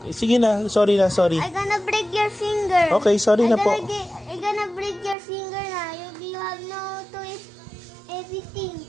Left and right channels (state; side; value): drops out; left; at 5.2 s